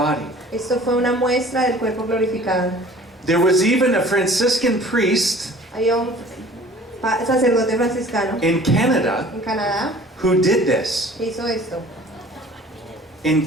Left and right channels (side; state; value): both; normal; correlation 0.48